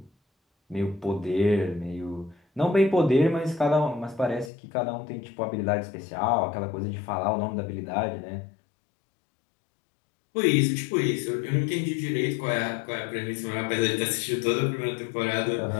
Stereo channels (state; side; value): drops out; right; at 4.5 s